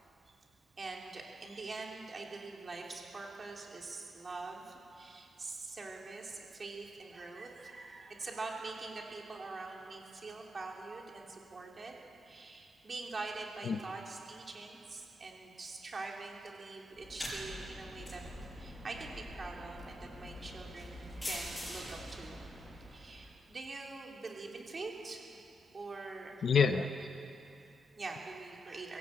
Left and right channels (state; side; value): normal; both; correlation 0.81